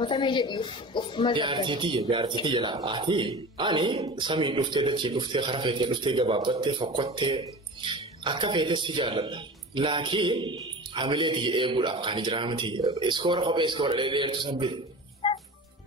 jedhi of Jaartii jala ati ani samiin dhuftee dachii dhuftee kara feetee dhuftee gabaabbattee fokkottee akka feetee si jaalladha. Laakiin hamileetii eeguudhaaf kan jiraa miti. Iskoora kophee iskoora dheedeertu sabbite.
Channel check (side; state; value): both; normal; correlation 0.34